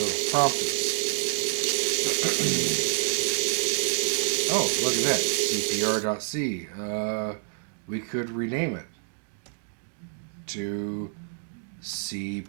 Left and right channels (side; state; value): left; silent; digital silence